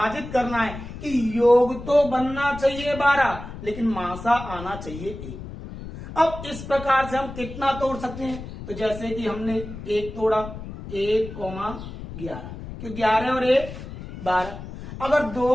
करना है कि योग तो बनना चाहिए 12, लेकिन मासा आना चाहिए 1। अब इस प्रकार से हम कितना तोड़ सकते हैं, तो जैसे कि हमने 1 तोड़ा 1,11, क्यों 11 और 1 12। अगर 2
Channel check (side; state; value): left; noise; rumble, 11 dB below the sound